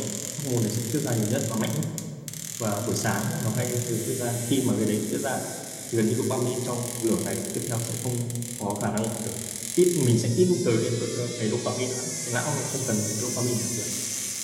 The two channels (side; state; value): both; identical; correlation 1.00